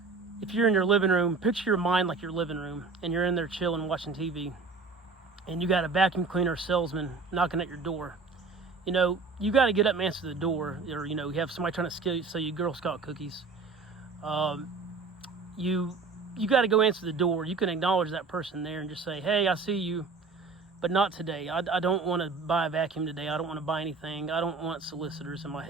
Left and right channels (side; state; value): left; quieter; 4.4 dB